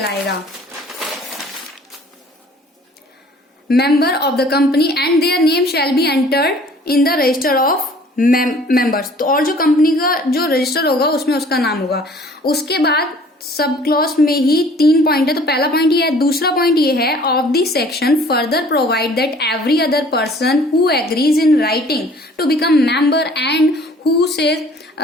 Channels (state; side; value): normal; both; correlation 0.53